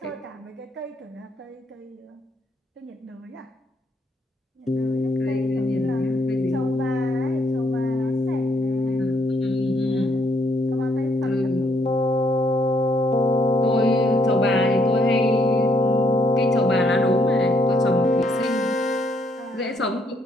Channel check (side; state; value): both; normal; correlation 0.71